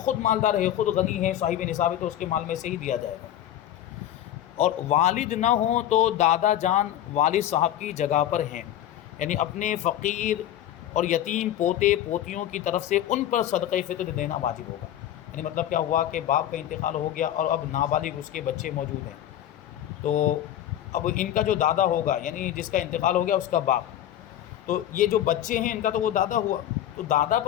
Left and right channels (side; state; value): right; quieter; 11.9 dB